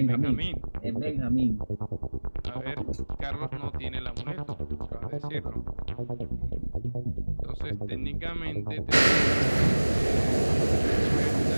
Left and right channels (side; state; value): both; inverted; correlation -1.00